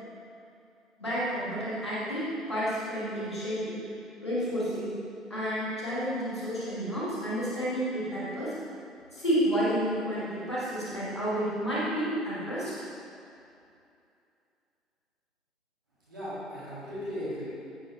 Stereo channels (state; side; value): normal; both; correlation 0.42